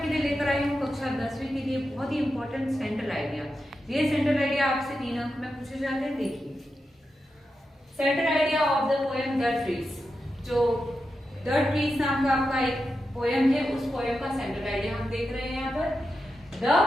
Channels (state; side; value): normal; both; correlation 0.89